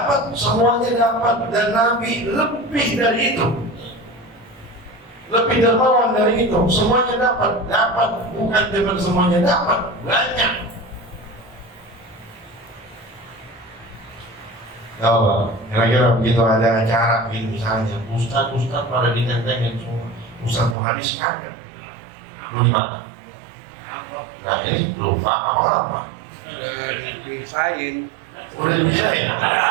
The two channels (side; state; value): left; drops out; at 20.8 s